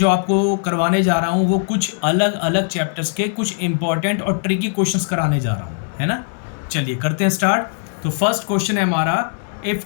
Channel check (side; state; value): right; silent; digital silence